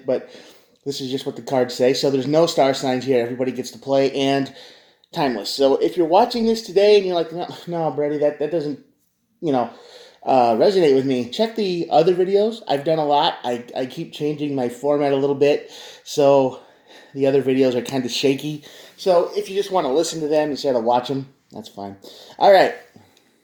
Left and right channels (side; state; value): both; identical; correlation 1.00